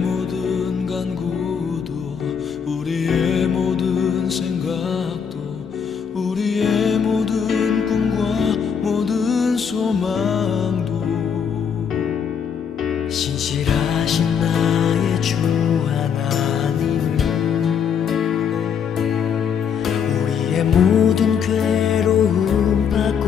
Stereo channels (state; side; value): quieter; right; 7.1 dB